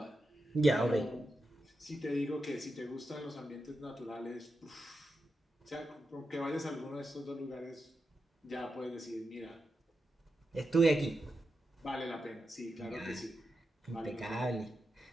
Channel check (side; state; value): both; normal; correlation 0.88